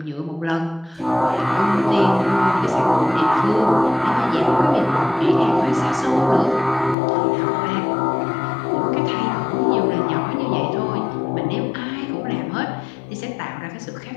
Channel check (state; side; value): drops out; right; at 7.0 s